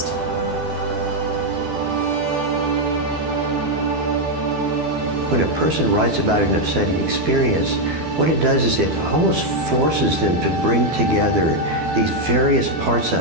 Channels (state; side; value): late; left; 12 ms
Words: When a person writes about an upsetting experience, what it does is it almost forces them to bring together these various parts